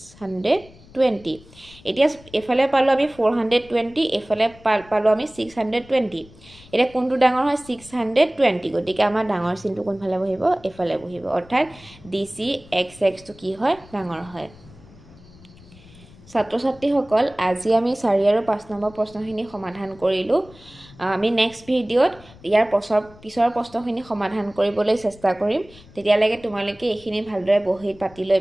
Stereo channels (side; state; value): left; noise; rumble, 23 dB below the sound